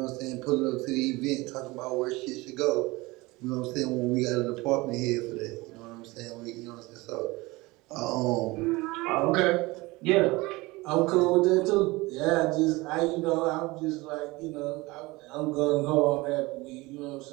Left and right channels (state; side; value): quieter; left; 22.2 dB